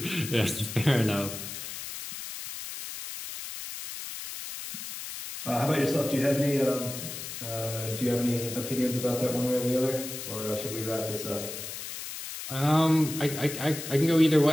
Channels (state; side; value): noise; left; hiss, 8 dB below the sound